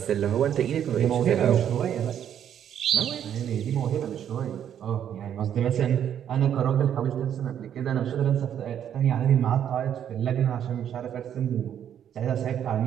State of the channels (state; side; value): quieter; left; 9.6 dB